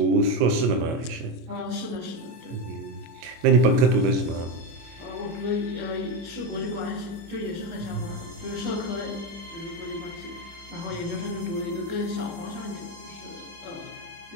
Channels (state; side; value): late; left; 25 ms